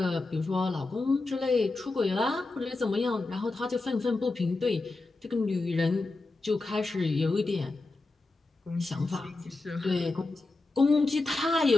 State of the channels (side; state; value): right; quieter; 3.3 dB